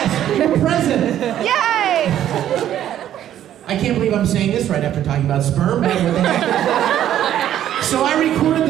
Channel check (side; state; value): left; quieter; 11.3 dB